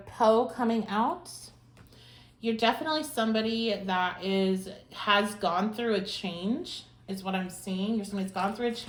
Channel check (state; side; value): identical; both; correlation 1.00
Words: Poe coming out. You're definitely somebody that has gone through a change, is what I'm seeing. You're somebody that's gone through a